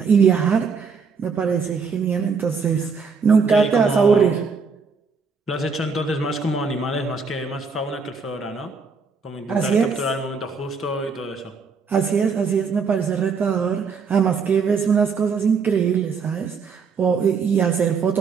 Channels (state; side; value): quieter; left; 5.2 dB